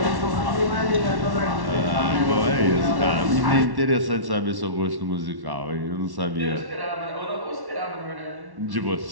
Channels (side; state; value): left; late; 1.1 ms